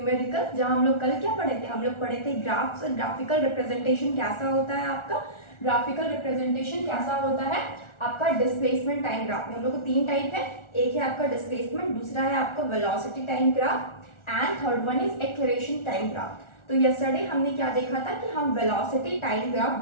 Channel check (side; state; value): right; late; 1.4 ms